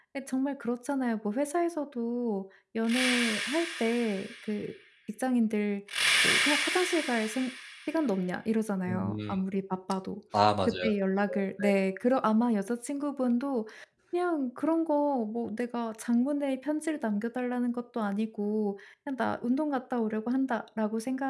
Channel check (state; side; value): identical; both; correlation 1.00